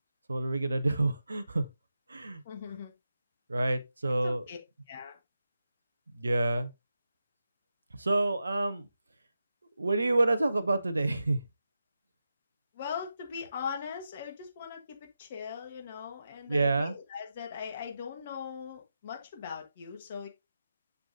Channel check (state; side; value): inverted; both; correlation -0.90